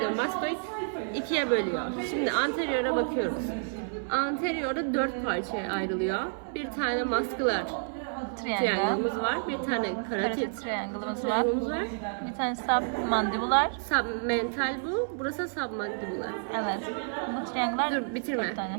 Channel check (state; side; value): silent; left; 58 dB below the other